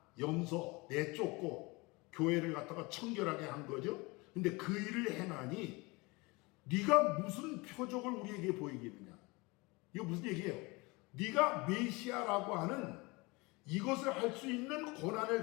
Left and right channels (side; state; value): right; quieter; 25.3 dB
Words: 염소 내쫓고 교회를 갖다가 청결하게 한 거죠. 근데 그 일을 행하니 네가 무슨 표적을 우리에게 보이겠느냐. 이거 무슨 얘기예요? 네가 메시아라고 하는 이것을 할 수 있는 권한을